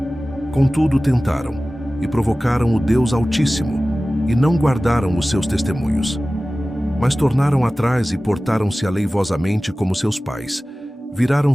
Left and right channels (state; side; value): normal; both; correlation 0.97